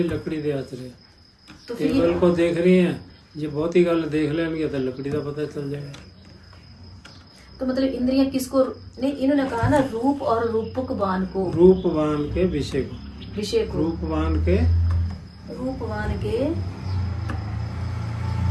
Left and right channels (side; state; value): both; identical; correlation 1.00